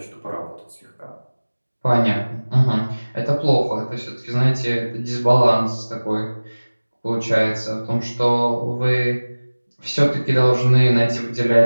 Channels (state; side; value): inverted; both; correlation -1.00